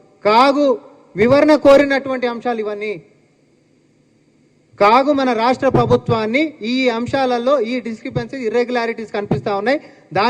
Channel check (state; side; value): identical; both; correlation 1.00